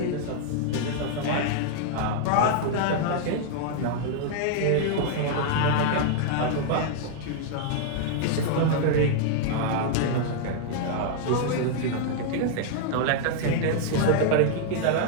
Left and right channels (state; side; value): different; both; correlation -0.01